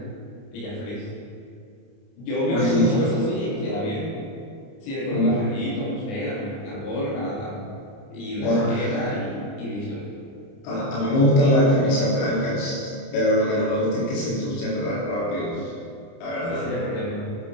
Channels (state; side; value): late; right; 30 ms